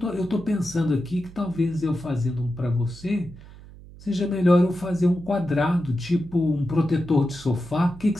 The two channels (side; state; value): right; noise; hum, 19 dB below the sound